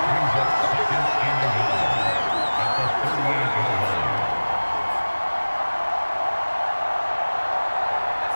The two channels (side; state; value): both; inverted; correlation -1.00